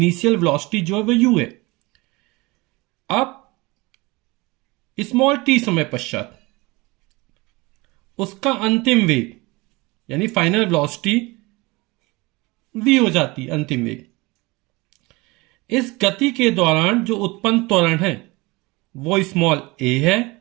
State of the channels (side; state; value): left; quieter; 23.7 dB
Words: वेलोसिटी जो है वो u है। अब स्मॉल t समय पश्चात उसका अंतिम वेग यानी फाइनल वेलोसिटी v हो जाती है, अंतिम वेग। इस गति के दौरान जो उत्पन्न त्वरण है वो स्मॉल a है